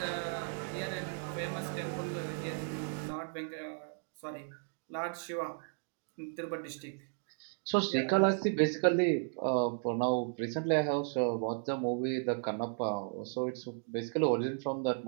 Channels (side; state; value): left; silent; 55 dB below the other